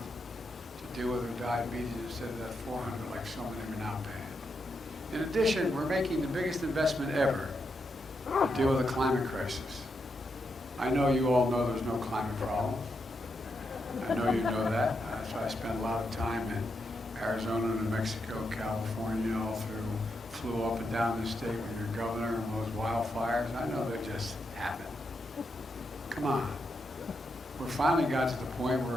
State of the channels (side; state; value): both; normal; correlation 0.83